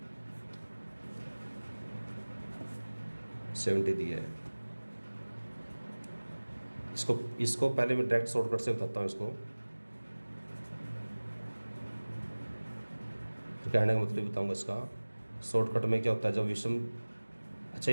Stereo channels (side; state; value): both; inverted; correlation -1.00